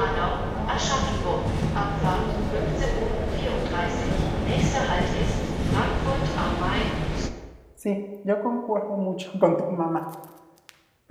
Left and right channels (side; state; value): both; identical; correlation 1.00